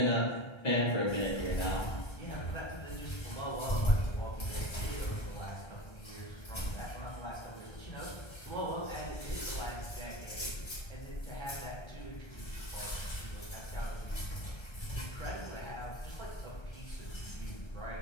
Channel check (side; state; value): right; late; 1.3 ms